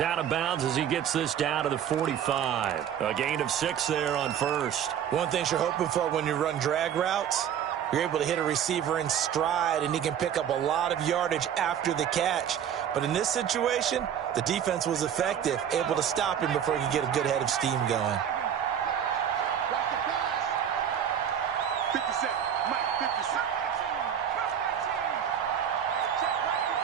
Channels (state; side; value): quieter; left; 9.1 dB